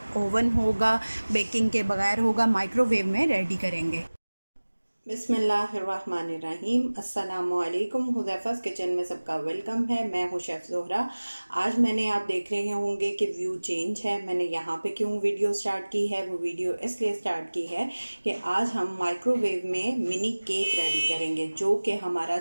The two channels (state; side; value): inverted; both; correlation -1.00